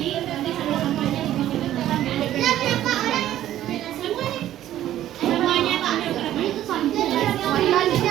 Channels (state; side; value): quieter; left; 12.7 dB